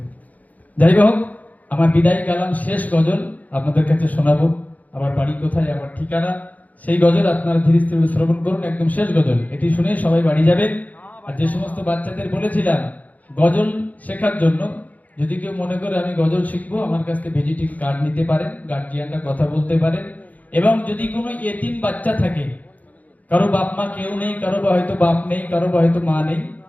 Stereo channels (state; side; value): late; right; 0.077 ms